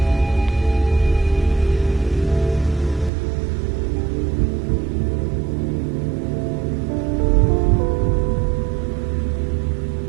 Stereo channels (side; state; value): left; drops out; at 3.1 s